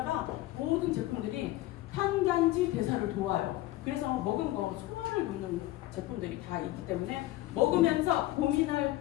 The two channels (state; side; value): quieter; right; 16.6 dB